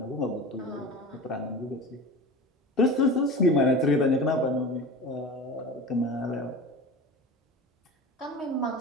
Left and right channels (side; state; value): both; normal; correlation 0.32